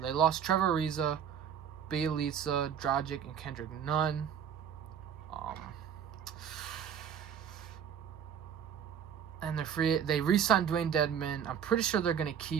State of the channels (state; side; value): quieter; left; 8.4 dB